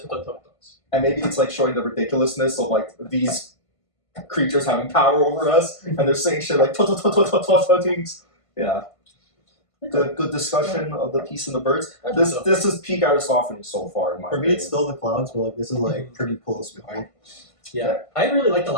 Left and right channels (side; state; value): right; late; 1.5 ms